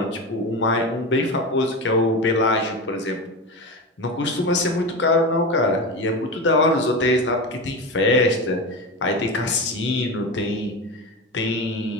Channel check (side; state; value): both; normal; correlation 0.23